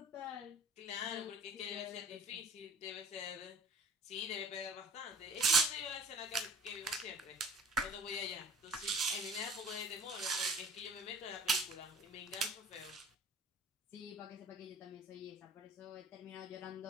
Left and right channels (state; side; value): normal; both; correlation 0.47